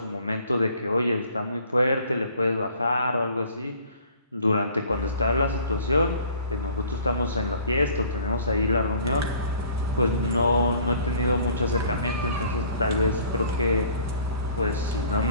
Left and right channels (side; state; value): both; inverted; correlation -0.52